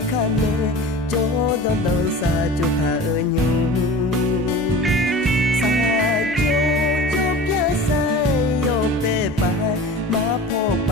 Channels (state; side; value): normal; both; correlation 0.37